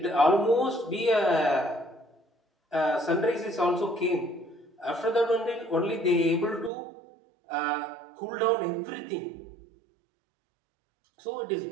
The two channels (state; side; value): drops out; left; at 6.7 s